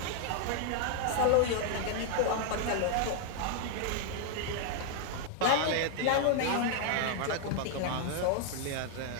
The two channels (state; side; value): different; both; correlation 0.00